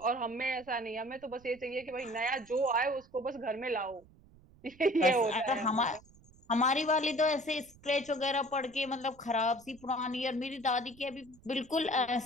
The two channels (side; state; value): right; noise; rumble, 26 dB below the sound